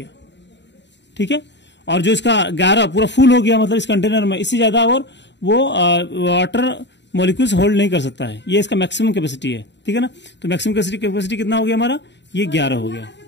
ठीक है। और जो इसका 11 पूरा फुल हो गया, मतलब इस कंटेनर में इससे ज्यादा और वो वाटर मॉलिक्यूल्स होल्ड नहीं कर सकता है, ये इसका मैक्सिमम कैपेसिटी है, ठीक है ना। तो मैक्सिमम कैपेसिटी कितना हो गया हमारा, ये 11 हो गया,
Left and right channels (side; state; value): right; late; 0.52 ms